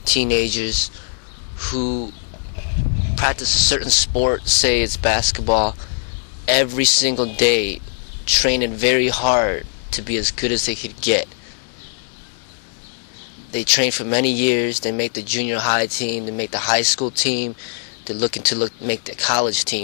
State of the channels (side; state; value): right; silent; digital silence